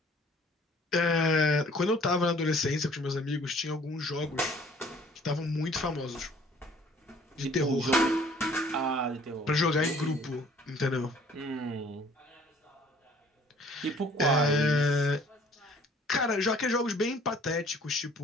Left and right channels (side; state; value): both; normal; correlation 0.55